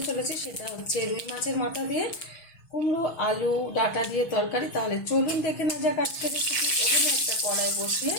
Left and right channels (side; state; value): right; late; 6.2 ms